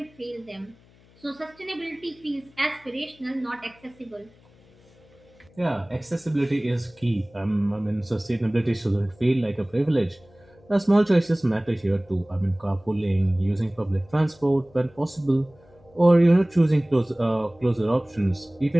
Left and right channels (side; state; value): left; noise; hum, 29 dB below the sound